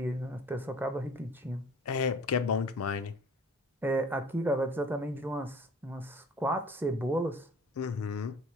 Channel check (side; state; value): both; normal; correlation 0.47